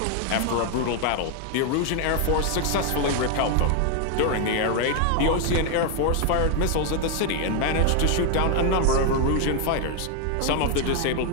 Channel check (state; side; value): different; both; correlation 0.01